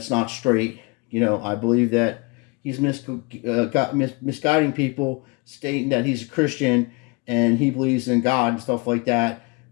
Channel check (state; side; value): quieter; right; 28.4 dB